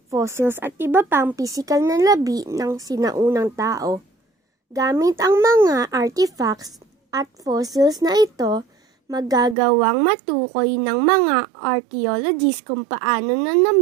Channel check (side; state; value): left; drops out; at 9.6 s